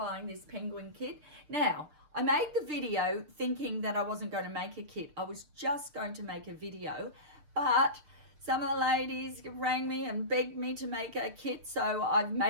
this penguin kit. Now, I made the video thinking that I wasn't going to make a kit. I was just going to make a video, but some of the ladies rang me and begged me to make a kit, so I've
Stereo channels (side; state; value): left; late; 6.7 ms